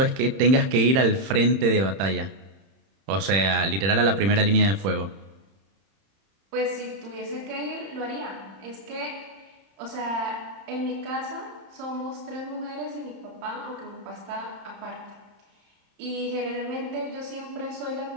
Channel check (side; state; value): left; late; 31 ms